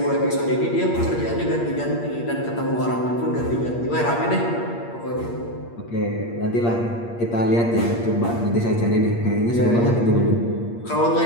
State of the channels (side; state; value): right; late; 8.6 ms